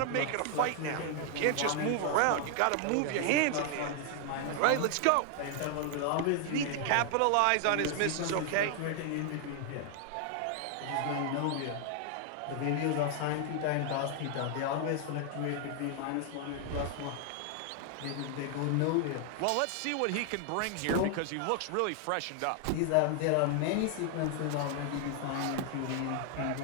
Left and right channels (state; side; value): different; both; correlation 0.00